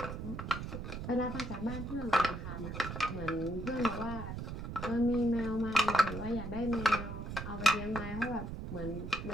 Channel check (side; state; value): right; noise; rumble, 6 dB below the sound